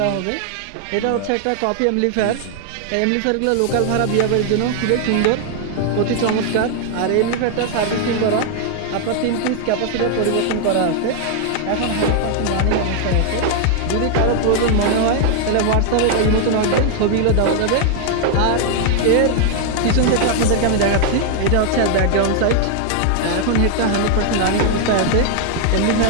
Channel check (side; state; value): both; different; correlation 0.00